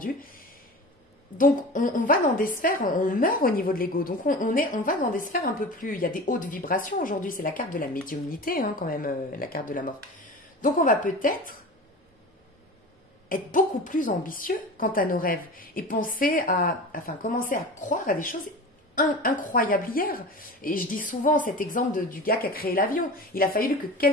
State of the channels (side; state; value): both; normal; correlation 0.34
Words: Donc on va dans des sphères, on meurt au niveau de l'ego, donc on va dans des sphères un peu plus... Il y a des hautes vibrations aujourd'hui, c'est la carte de la médiumnité, hein, quand même, la carte de la mort. Donc on va peut-être être beaucoup plus ambitieux quant à nos rêves et commencer à croire à des choses incroyables hier. Et je dis souvent cet exemple du gars qui a créé l'avion. Il a fallu que